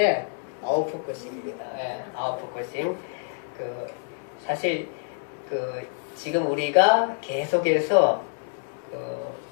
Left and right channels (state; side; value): silent; right; digital silence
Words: 아웃포커싱입니다. 네, 아웃포커싱. 사실 지금 우리가 계속해서